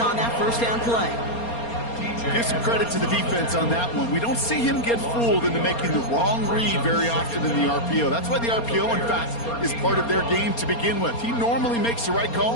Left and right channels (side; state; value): right; late; 4.3 ms